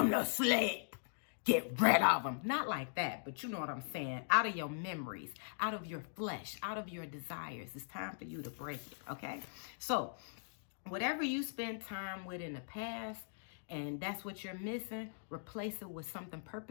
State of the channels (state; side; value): silent; right; digital silence